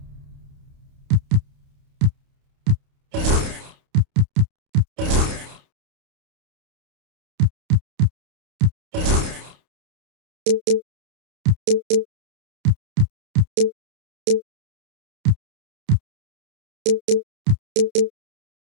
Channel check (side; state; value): left; late; 29 ms